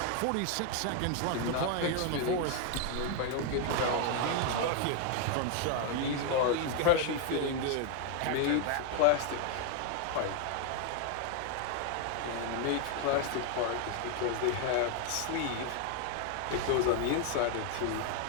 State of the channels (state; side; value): different; both; correlation 0.01